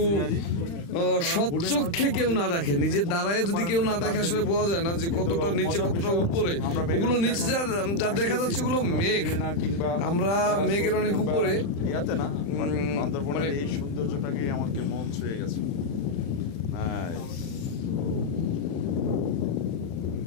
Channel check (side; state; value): right; late; 35 ms